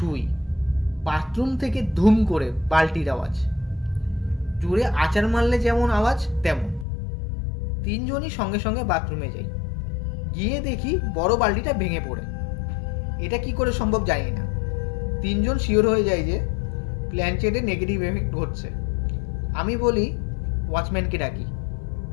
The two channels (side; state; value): right; drops out; at 6.9 s